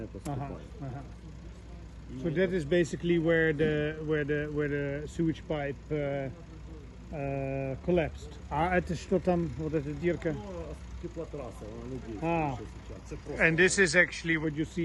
поступает. So that is basically where the sewage pipe collapsed. Это что там, вот эта дырка? And this is actually what you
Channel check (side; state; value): both; identical; correlation 1.00